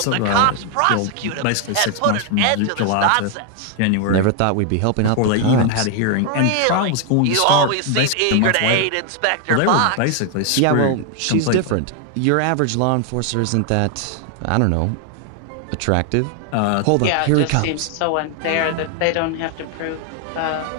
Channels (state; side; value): different; both; correlation 0.00